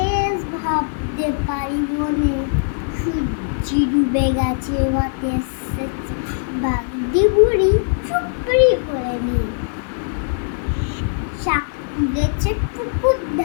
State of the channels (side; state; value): right; silent; digital silence